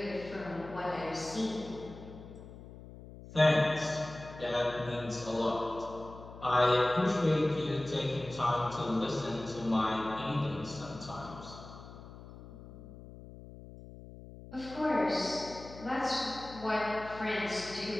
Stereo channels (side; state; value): left; noise; hum, 15 dB below the sound